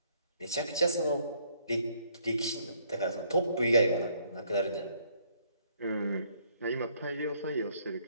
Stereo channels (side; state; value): both; inverted; correlation -0.66